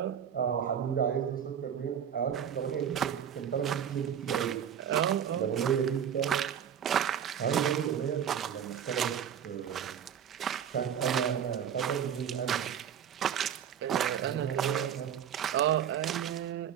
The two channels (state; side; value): quieter; left; 8.7 dB